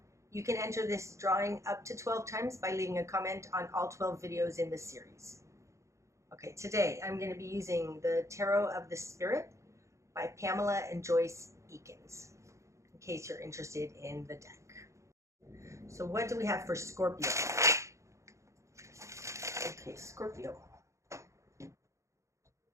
You can enter this drawing up to 12 times by leaving a comment on all 12 videos in this series. Okay, today I'm going to be using the Tarot of the Spirit by Pamela and Joyce Eakins, in case you're interested in the deck. So what do we have for Scorpio? Okay, Scorpio.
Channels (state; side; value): late; left; 0.14 ms